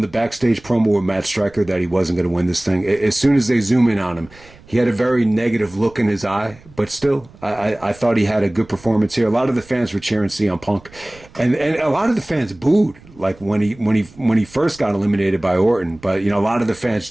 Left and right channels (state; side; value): noise; right; rumble, 24 dB below the sound